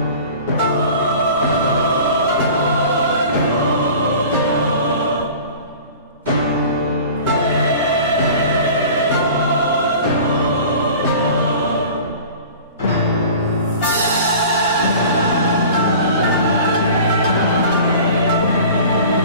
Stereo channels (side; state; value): both; inverted; correlation -0.41